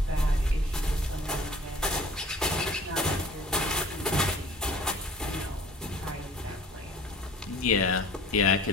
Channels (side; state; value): both; normal; correlation 0.49